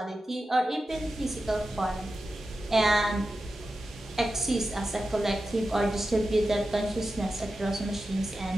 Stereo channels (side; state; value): both; normal; correlation 0.92